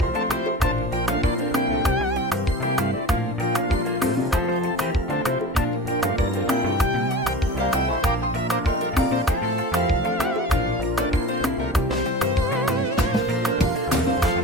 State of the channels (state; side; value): normal; both; correlation 0.34